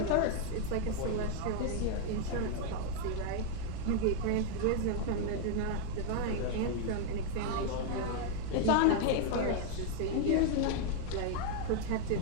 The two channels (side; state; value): both; different; correlation 0.00